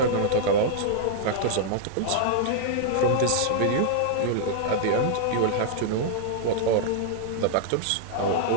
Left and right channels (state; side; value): different; both; correlation -0.01